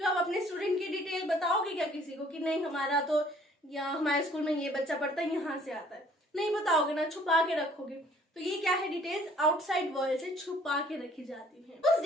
आप अपने स्टूडेंट की डिटेल बताओगे क्या किसी को कि नहीं हमारा तो या हमारे स्कूल में ये बच्चा पढ़ता है, यहाँ से आता है, नहीं बताओगे ना, छुपा के रखोगे। तो ये क्या है, डिटेल्स आउटसाइड वर्ल्ड से छुपा के रखी जाती है। उस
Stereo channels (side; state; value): both; normal; correlation 0.58